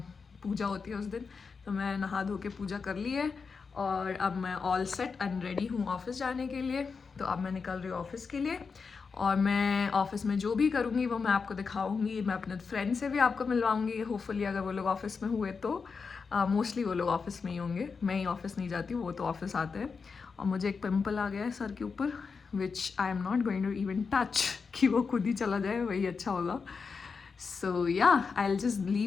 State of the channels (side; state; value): right; quieter; 5.2 dB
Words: पूजा होती है उस दिन। तो मैं नहा धो के पूजा कर ली है और अब मैं ऑल सेट एंड रेडी हूँ ऑफिस जाने के लिए। तो अब मैं निकल रही हूँ ऑफिस के लिए और मैं ऑफिस में जो भी करूँगी वो मैं आपको दिखाऊंगी। मैं अपने फ्रेंड से भी आपको मिलवाऊंगी, होपफुली अगर वो लोग ऑफिस में हुए तो। मोस्टली वो लोग ऑफिस में ही होंगे, मैं ही ऑफिस नहीं जाती हूँ, वो तो ऑफिस आते हैं। और मुझे एक पिंपल आ गया है सर के ऊपर, which I am not going to even touch, कि वो खुद ही चला जाए वही अच्छा होगा। सो या I will just